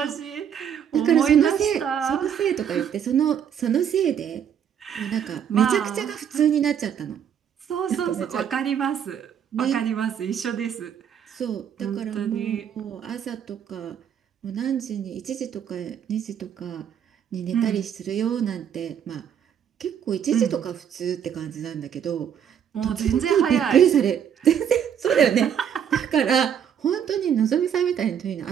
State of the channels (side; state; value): left; quieter; 8.6 dB